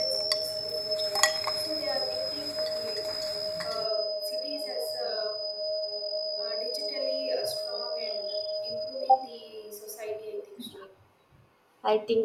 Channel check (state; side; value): identical; both; correlation 1.00